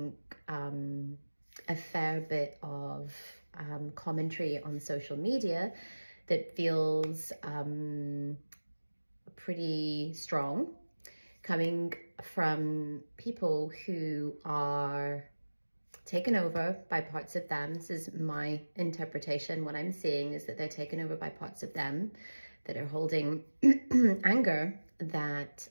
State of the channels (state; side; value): inverted; both; correlation -1.00